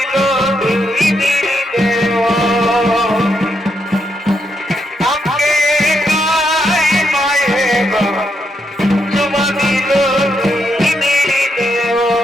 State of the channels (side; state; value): both; normal; correlation 0.80